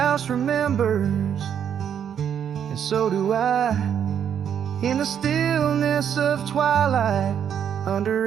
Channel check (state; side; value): quieter; left; 8.6 dB